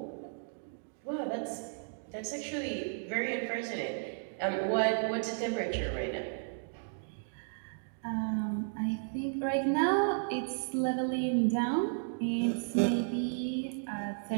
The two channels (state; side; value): silent; left; digital silence